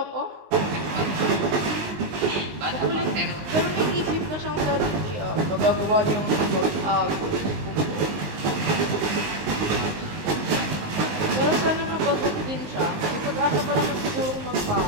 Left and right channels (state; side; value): late; left; 19 ms